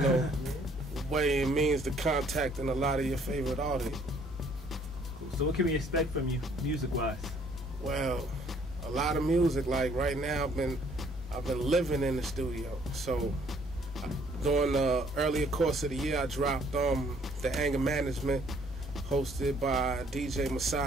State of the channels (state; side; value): normal; both; correlation 0.62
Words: way and means to contacting a lot of your favorite artists. Cool. So what can we expect from you, music-wise? Well, a lot of music. Like right now, I've been living in the studio. So during the earlier course of the year, I dropped the Anger Management, hosted by DJ